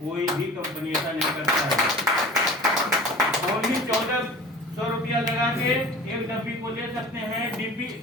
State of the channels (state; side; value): normal; both; correlation 0.40